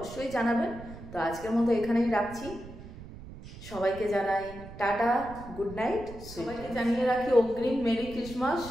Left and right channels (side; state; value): right; noise; rumble, 15 dB below the sound